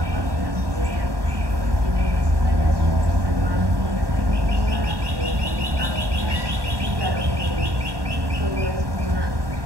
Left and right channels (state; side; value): late; left; 1.1 ms